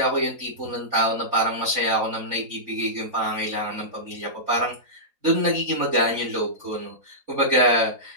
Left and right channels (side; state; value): left; late; 4.0 ms